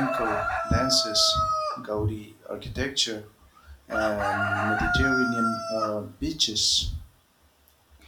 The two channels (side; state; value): both; identical; correlation 1.00